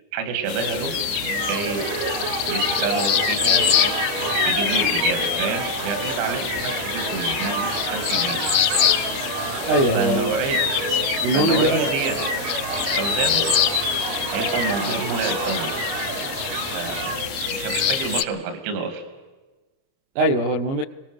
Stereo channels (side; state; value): left; late; 30 ms